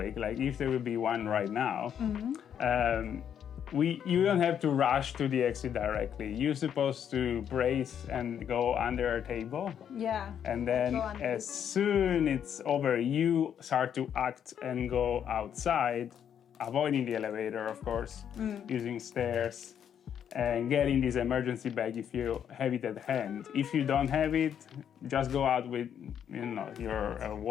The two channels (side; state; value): right; quieter; 8.8 dB